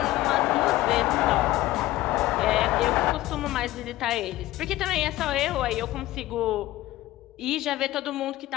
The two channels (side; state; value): right; quieter; 16.3 dB